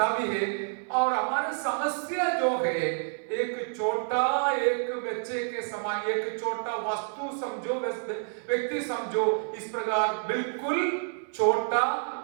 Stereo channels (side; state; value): left; silent; 57 dB below the other